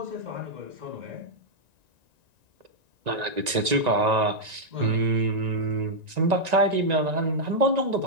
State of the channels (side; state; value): left; late; 1.9 ms